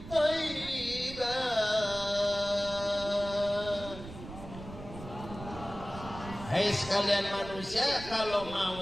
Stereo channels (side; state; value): right; noise; rumble, 13 dB below the sound